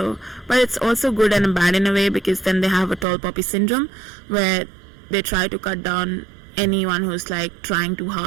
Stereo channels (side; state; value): left; drops out; at 3.1 s